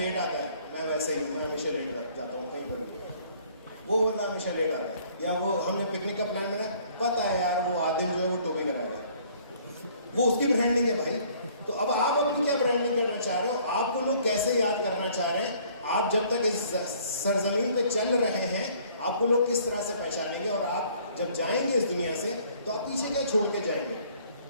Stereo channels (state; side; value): inverted; both; correlation -0.58